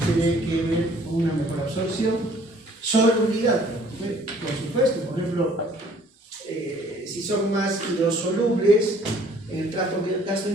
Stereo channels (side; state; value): both; normal; correlation 0.57